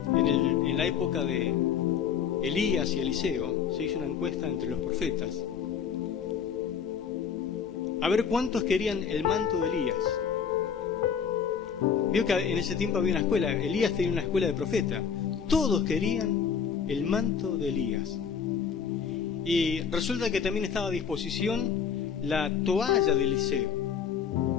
en la época de Elías y Eliseo, se hizo una encuesta entre los profetas. A ver cuántos querían el manto de Elías. Vio que en ese tiempo había una escuela, Elías tenía una escuela de profeta. Todos querían el manto de Elías. Y resulta que también estaba a disposición la toalla de Eliseo.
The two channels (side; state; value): right; quieter; 7.1 dB